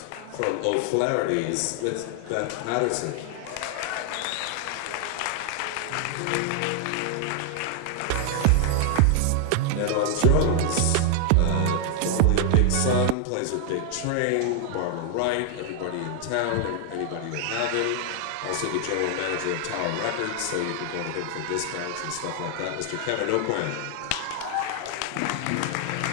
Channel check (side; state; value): both; different; correlation 0.00